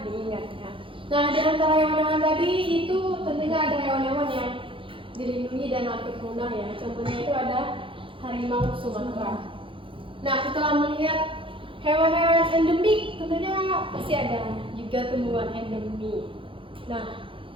ya. Nah, di antara hewan-hewan tadi itu tentunya ada hewan-hewan yang dilindungi dan hampir punah ya. Contohnya itu ada harimau Sumatera. Nah, setelah melihat hewan-hewan endemik, tentunya pasti ada juga tumbuhan endemik. Nah,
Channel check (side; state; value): left; late; 0.25 ms